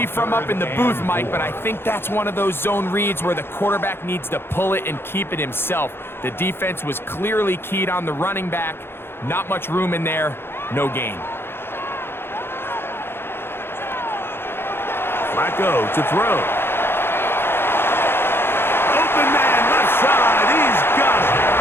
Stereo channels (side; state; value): right; late; 0.11 ms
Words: from up in the booth, Mike, but I think that's one of those zone reads where the quarterback needs to pull it and keep it himself. The defense was clearly keyed on the running back. Not much room in there. No gain. Flacco to throw. Open man, left side. He's got it.